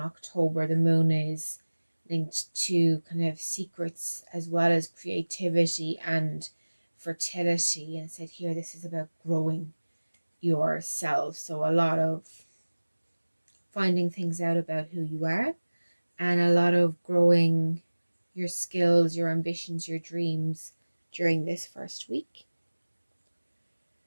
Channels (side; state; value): both; inverted; correlation -1.00